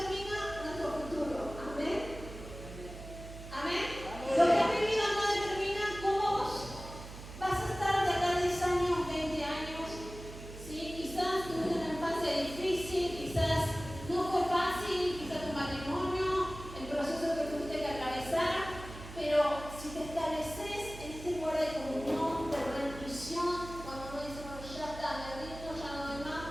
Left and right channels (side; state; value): right; noise; hum, 13 dB below the sound